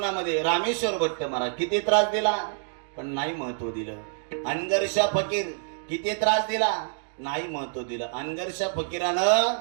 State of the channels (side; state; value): left; silent; digital silence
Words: रामेश्वर भट्ट महाराज किती त्रास दिला पण नाही महत्व दिलं. अनगरशा फकीर किती त्रास दिला नाही महत्व दिलं. अनगरशा फकीरानं